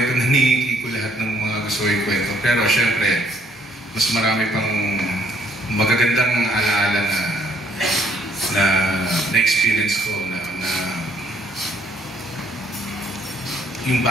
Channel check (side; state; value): both; normal; correlation 0.66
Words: na ni Kiko lahat ng mga gusto yung kwento. Pero syempre, mas marami pang magagandang alaala na experience ko na yung